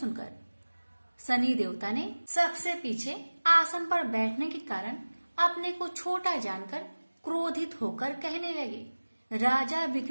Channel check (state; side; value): inverted; both; correlation -1.00